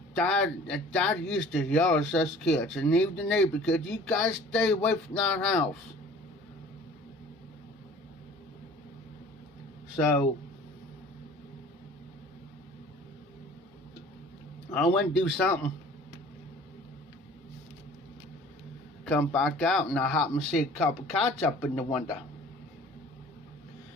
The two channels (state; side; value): normal; both; correlation 0.48